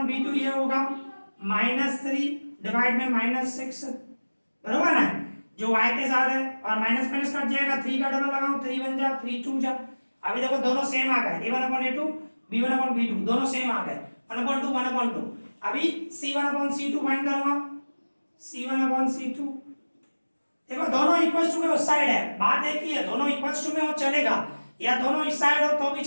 b2 ये होगा -3 डिवाइड में -6, बरोबर ना, जो y के साथ है और माइनस माइनस कट जाएगा, 3 का डबल लगाओ 3 1 जा 3 2 जा। अभी देखो दोनों सेम आ गए, a1 upon a2 b1 upon b2 दोनों सेम आ गए, 1 अपॉन 2 1 अपॉन 2। अभी c1 अपॉन c2 फाइंड करूंगा, c1 अपॉन c2, देखो दोनों इक्वल टू के उस साइड है, बात एक ही है, दोनों इक्वल टू में हो चलेगा या दोनों इस साइड हो तो भी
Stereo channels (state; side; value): inverted; both; correlation -1.00